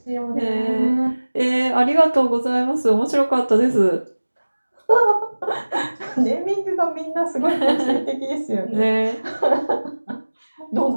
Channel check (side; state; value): both; inverted; correlation -1.00